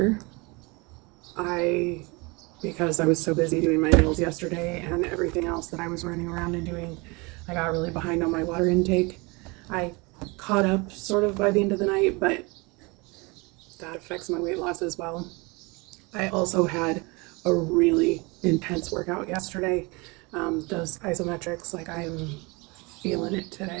Because I was so busy doing my nails yesterday and everything else that I was running around and doing, I got really behind on my water intake. I caught up sort of by the end of the night, but that affects my weight loss as well. I also had a really intense workout yesterday. Those isometrics, like I am feeling it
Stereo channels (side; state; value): left; quieter; 26.9 dB